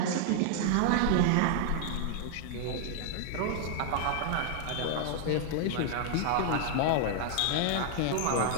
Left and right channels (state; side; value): different; both; correlation 0.00